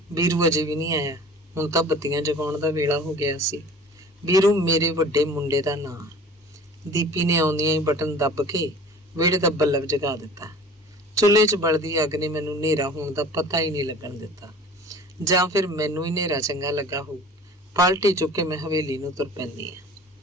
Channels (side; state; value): both; normal; correlation 0.44